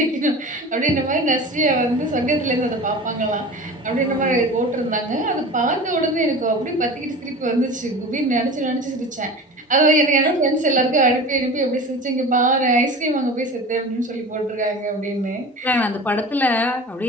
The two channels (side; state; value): both; normal; correlation 0.35